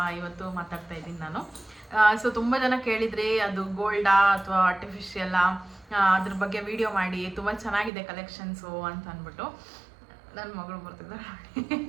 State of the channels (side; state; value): left; drops out; at 7.9 s